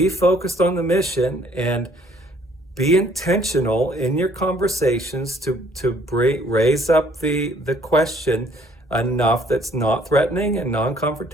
focused on the mission and be intentional in your conversations to raise up the question enough that's not threatening and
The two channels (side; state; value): both; normal; correlation 0.61